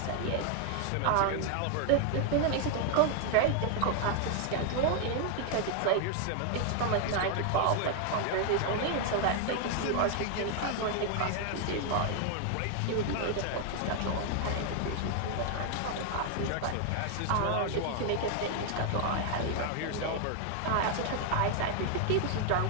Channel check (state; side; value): different; both; correlation 0.00